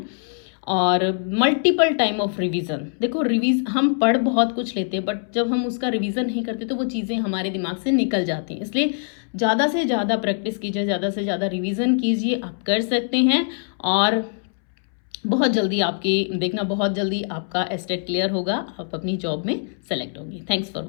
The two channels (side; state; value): right; silent; 63 dB below the other